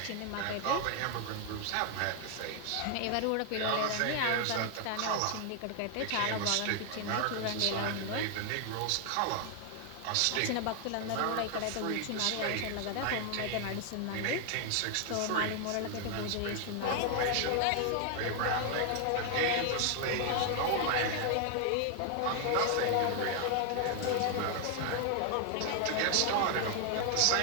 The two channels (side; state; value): both; different; correlation 0.00